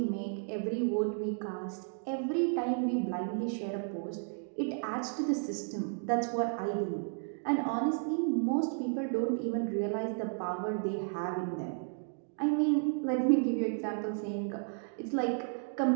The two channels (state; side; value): silent; left; 56 dB below the other